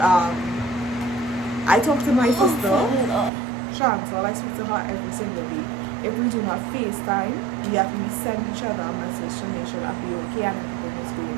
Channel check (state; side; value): drops out; left; at 3.3 s